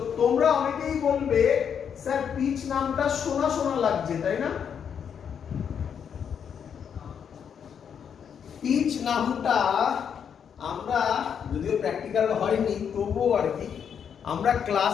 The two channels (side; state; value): right; quieter; 7.7 dB